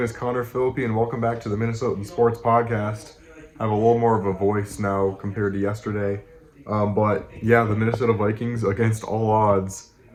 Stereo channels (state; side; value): identical; both; correlation 1.00